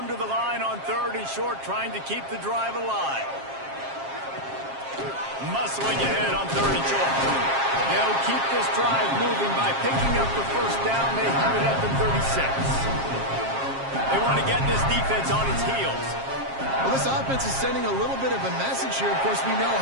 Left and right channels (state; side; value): late; left; 7.4 ms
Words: to the line on third and short, trying to keep the drive alive. Muscling ahead on third and short. They'll keep this drive moving by picking up the first down. They have it at the 36. They want to get this defense on its heels. Well, this offense is sending a little bit of a message here. Of course, we know